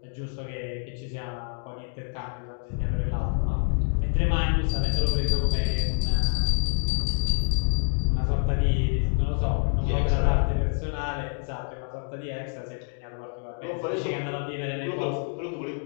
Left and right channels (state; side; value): silent; right; 58 dB below the other